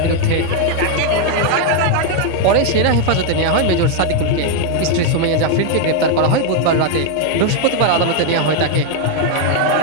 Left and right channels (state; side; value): different; both; correlation 0.01